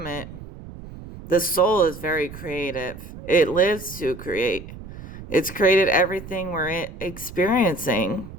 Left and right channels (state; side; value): noise; right; rumble, 14 dB below the sound